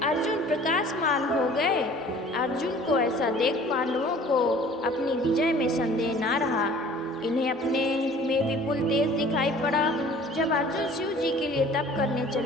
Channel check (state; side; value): normal; both; correlation 0.49